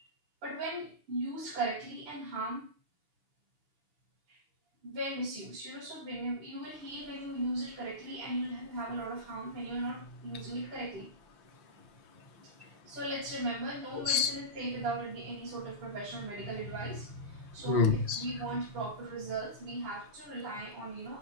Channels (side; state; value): left; late; 6.0 ms